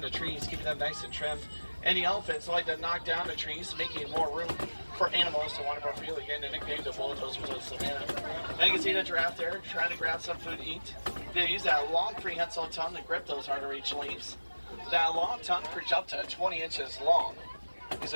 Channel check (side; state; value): both; inverted; correlation -1.00